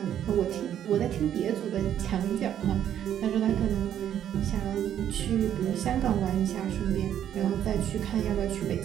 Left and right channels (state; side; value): quieter; left; 10.2 dB